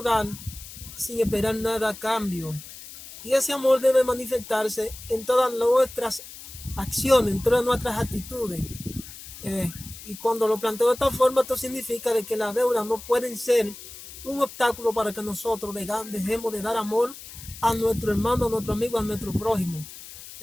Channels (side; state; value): left; noise; hiss, 15 dB below the sound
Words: dar sin esperar nada a cambio. Y ese amor debe manifestarse en todas nuestras acciones, en todas nuestras actitudes. Y cuando lo planteo de esta forma, esto significa de que las deudas no pueden ser un obstáculo para que nosotros dejemos de dar amor a nuestro hermano, a nuestro amigo, a nuestro prójimo.